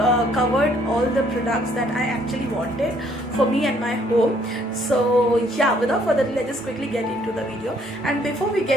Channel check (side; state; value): both; normal; correlation 0.65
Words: covered all the products that I actually wanted for me and my home. So yeah, without further ado, let's just quickly get into the video. And before we